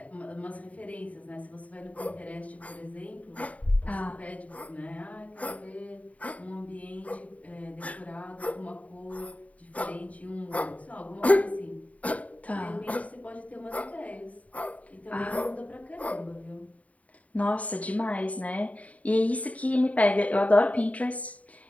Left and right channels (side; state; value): right; late; 0.069 ms